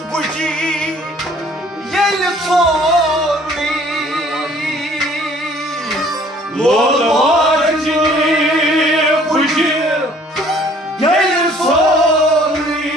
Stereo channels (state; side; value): normal; both; correlation 0.56